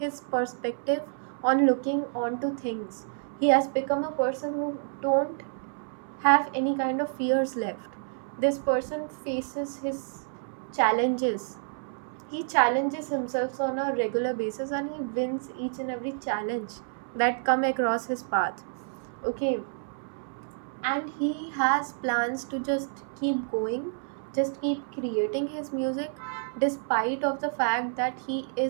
perspective on looking onto things. He has become a person who don't have any kind of fears left. This person faces his challenges. He challenges himself on a regular basis and he wins each and every challenge that come across his path. Okay, and he has plans to just keep going, just keep creating his music despite of the fact that he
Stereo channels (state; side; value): silent; left; 59 dB below the other